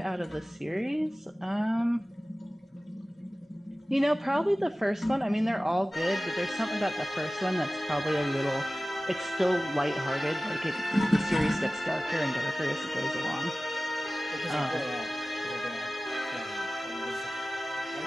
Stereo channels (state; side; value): normal; both; correlation 0.97